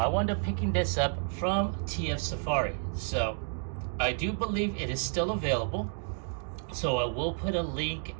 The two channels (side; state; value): left; silent; 57 dB below the other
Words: wound up picking this up from TF Safari, so I do believe it is still available. So I will put a link